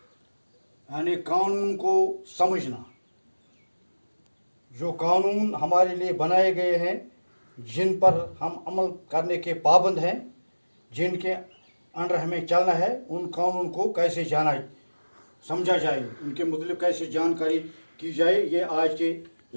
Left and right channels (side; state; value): both; inverted; correlation -1.00